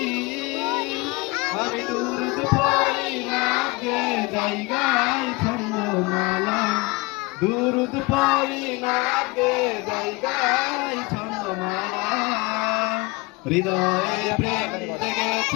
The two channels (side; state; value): right; quieter; 24.8 dB